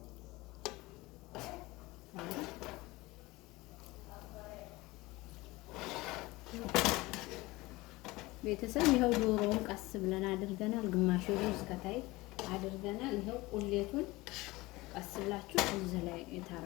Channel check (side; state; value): right; quieter; 21.0 dB